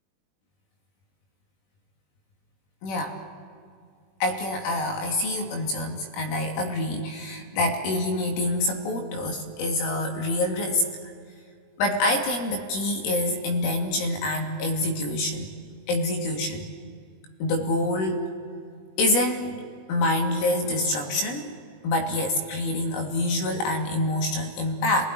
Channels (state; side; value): late; right; 21 ms